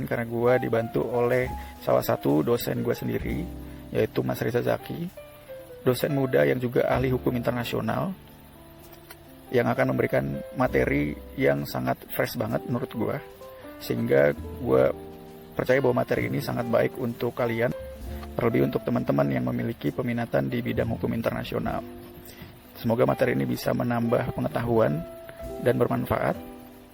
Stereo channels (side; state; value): both; identical; correlation 1.00